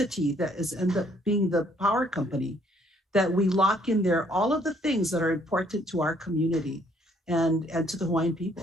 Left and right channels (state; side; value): normal; both; correlation 0.65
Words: that is end up being the power company, that we lock in there all of the things that are important to our community and to the Hawaiian